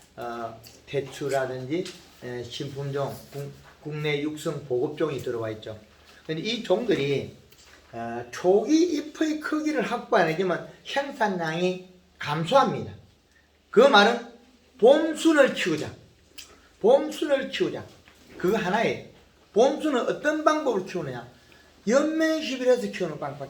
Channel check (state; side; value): identical; both; correlation 1.00